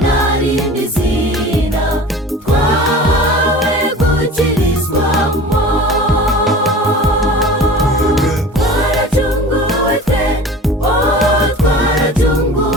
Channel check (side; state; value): both; normal; correlation 0.39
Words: nta rindi zina twahawe